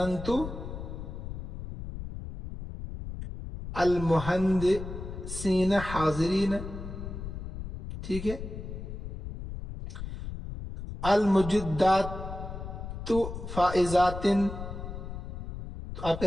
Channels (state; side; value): noise; left; rumble, 8 dB below the sound